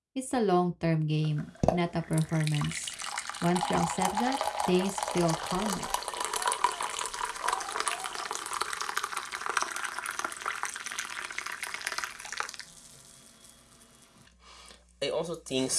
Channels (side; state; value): both; identical; correlation 1.00